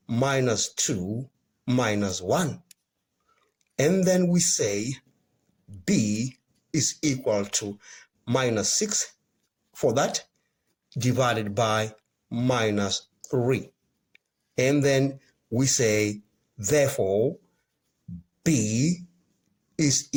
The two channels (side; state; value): both; identical; correlation 1.00